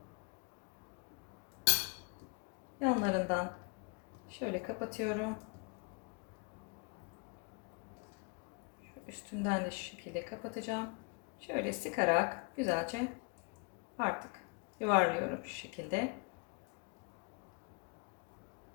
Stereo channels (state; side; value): quieter; right; 32.5 dB